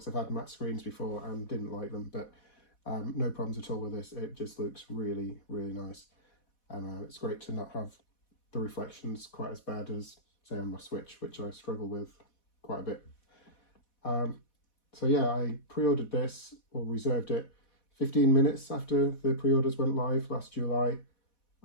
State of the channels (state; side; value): late; right; 4.1 ms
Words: I've had matte screens before and didn't like them, but no problems at all with this. It just looks really, really nice. And it's great to not have the reflections quite as bad as, say, on my Switch, which I struggle with quite a bit. So yeah, I pre-ordered this, or reserved it, 15 minutes after the pre-orders went live last July.